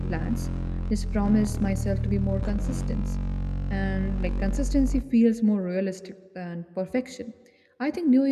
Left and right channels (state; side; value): identical; both; correlation 1.00